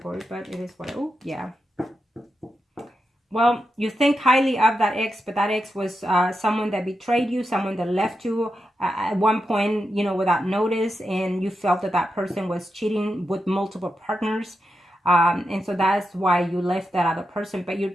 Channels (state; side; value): normal; both; correlation 0.88